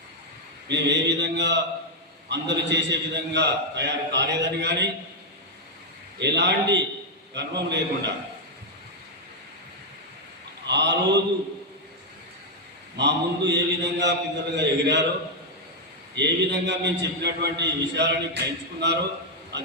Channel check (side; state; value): both; normal; correlation -0.01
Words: మేము ఏ విధంగా అందరూ చేసే విధంగా తయారు కాలేదని కానీ ఎలాంటి గర్వం లేకుండా ఆ రోజు మా ముందు ఏ విధంగా పిల్లలుగా ఎగిరారో, ఏ విధంగా మేము చెప్పినటువంటి విషయాలని గ్రహించుకున్నారో